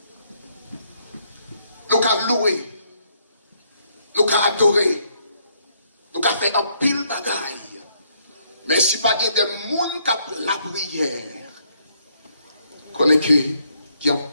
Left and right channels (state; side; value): inverted; both; correlation -0.72